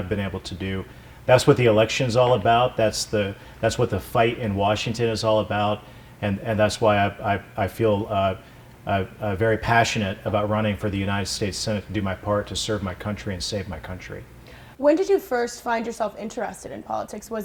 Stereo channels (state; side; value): identical; both; correlation 1.00